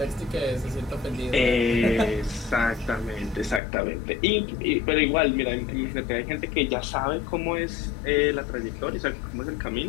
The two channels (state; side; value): drops out; right; at 3.6 s